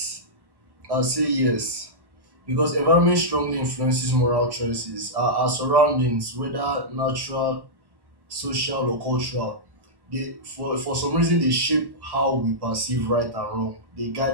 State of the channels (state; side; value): late; left; 1.1 ms